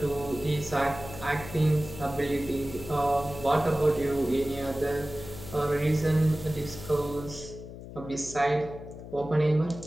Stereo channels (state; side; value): noise; left; hum, 13 dB below the sound